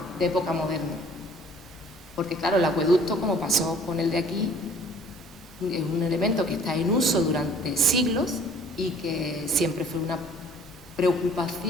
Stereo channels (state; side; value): normal; both; correlation 0.54